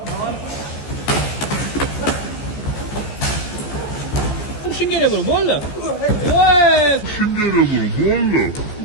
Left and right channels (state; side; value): late; right; 14 ms